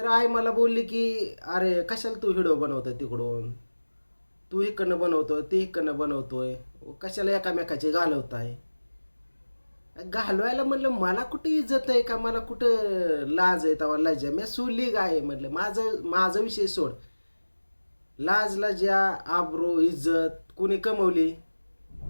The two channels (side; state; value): both; inverted; correlation -1.00